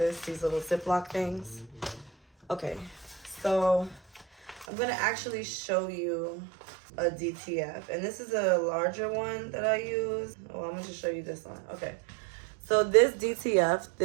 these little Ziploc things. Okay, so I'm gonna actually show you a DTF. And this is a larger one that I use. Oh, I'm gonna just show you this one. Okay, so this DTF,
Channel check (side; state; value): left; drops out; at 4.7 s